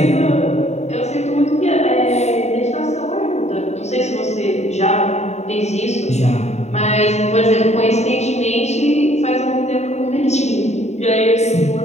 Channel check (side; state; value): right; late; 0.32 ms